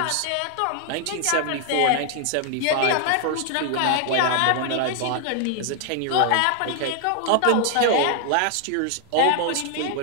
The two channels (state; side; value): different; both; correlation 0.00